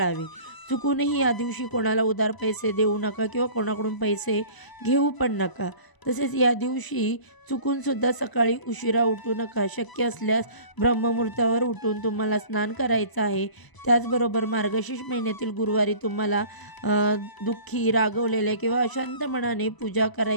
चुकूनही या दिवशी कोणाला उधार पैसे देऊ नका किंवा कोणाकडून पैसे घेऊ पण नका. तसेच या दिवशी चुकूनसुद्धा सकाळी उशिरा उठू नका. शक्य असल्यास ब्रह्ममुहूर्तावर उठून तुम्हाला स्नान करायचं आहे. त्याचबरोबर मार्गशीर्ष महिन्यातील गुरुवारी तुम्हाला दुःखी, रागवलेल्या किंवा अशांत मनाने पूजा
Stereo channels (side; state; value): right; late; 1.0 ms